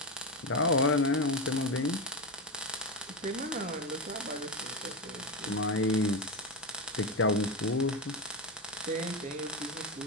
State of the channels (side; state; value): both; normal; correlation 0.13